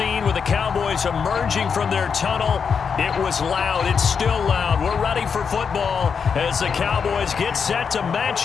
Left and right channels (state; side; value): quieter; right; 6.3 dB